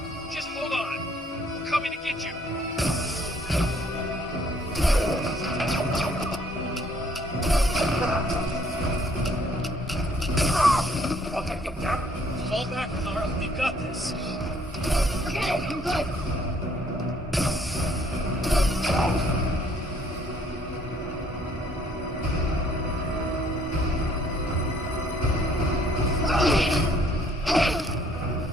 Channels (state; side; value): normal; both; correlation 0.62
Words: just hold on. We're coming to get you. Fall back, Carl. We've got this. Okay, I'm good.